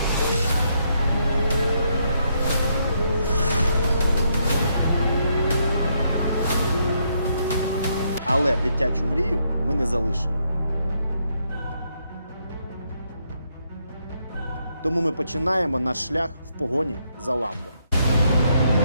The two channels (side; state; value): both; inverted; correlation -0.76